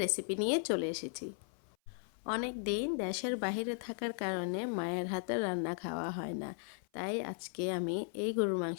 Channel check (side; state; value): right; silent; 53 dB below the other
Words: রেসিপি নিয়ে চলে এসেছি। অনেক দিন দেশের বাইরে থাকার কারণে মায়ের হাতে রান্না খাওয়া হয় না, তাই আজকে আমি এই গরুর